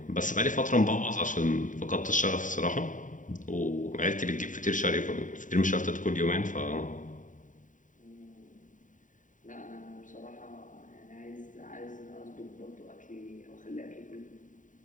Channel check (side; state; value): right; late; 0.37 ms